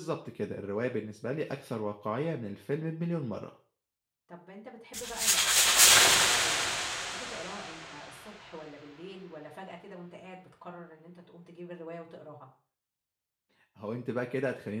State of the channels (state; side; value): identical; both; correlation 1.00